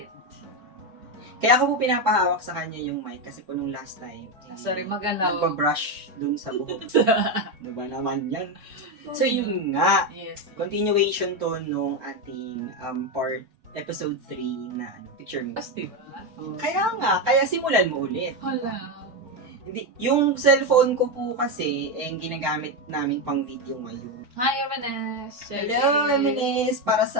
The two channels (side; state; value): left; late; 4.6 ms